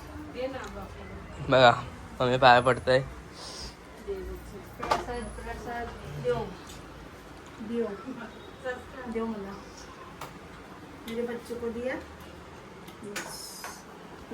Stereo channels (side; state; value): both; identical; correlation 1.00